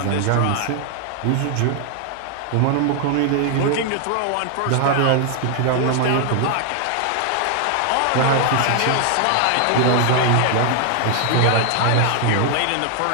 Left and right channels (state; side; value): different; both; correlation 0.00